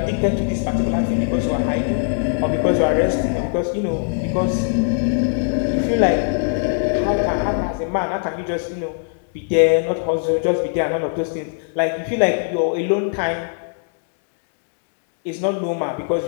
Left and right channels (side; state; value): right; silent; digital silence